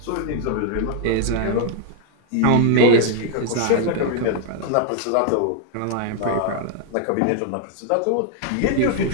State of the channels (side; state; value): both; different; correlation 0.00